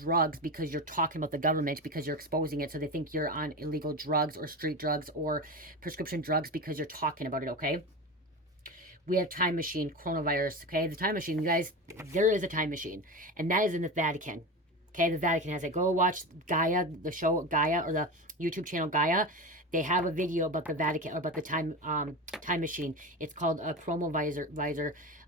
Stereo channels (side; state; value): both; normal; correlation 0.24